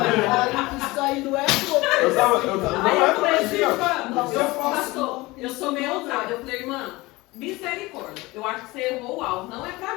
Isso aí não é pouco. Aí eu falei assim, pastor, eu sou meio ousada. Eu falei, irmã, misericórdia, eu acho que você errou o alvo, não é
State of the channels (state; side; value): quieter; right; 21.3 dB